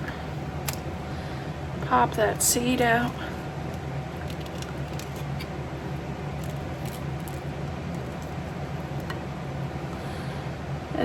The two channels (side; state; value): both; identical; correlation 1.00